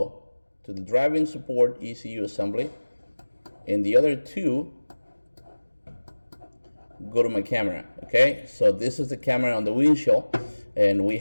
to the driving support ECU assembly, and the other 2 go to my camera. Okay, so this is the camera on the windshield, and we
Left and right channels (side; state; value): both; inverted; correlation -1.00